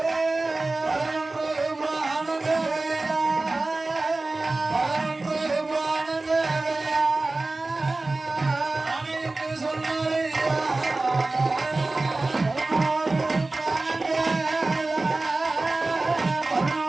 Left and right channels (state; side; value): quieter; left; 3.2 dB